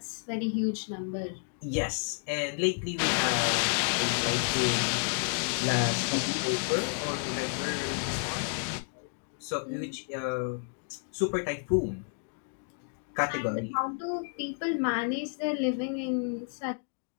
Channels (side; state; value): right; silent; 57 dB below the other